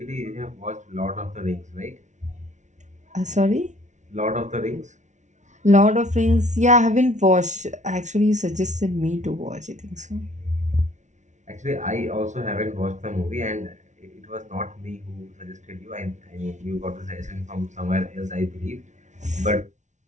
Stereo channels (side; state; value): left; late; 0.35 ms